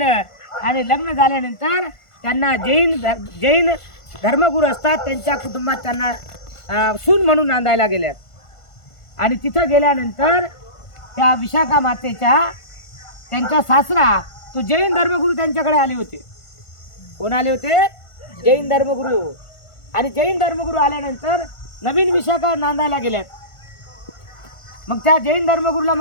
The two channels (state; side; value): late; right; 1.5 ms